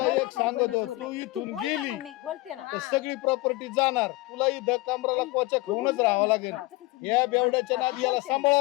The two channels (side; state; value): right; quieter; 20.9 dB